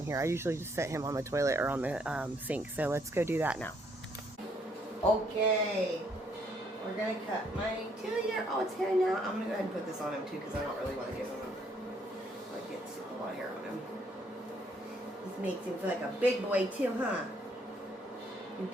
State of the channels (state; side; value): normal; both; correlation 0.69